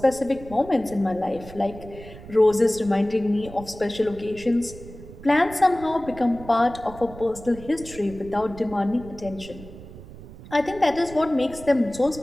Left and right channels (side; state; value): right; noise; rumble, 16 dB below the sound